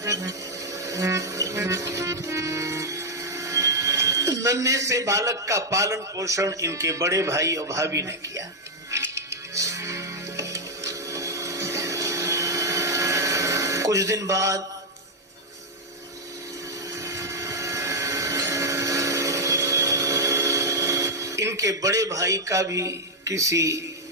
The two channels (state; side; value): normal; both; correlation -0.02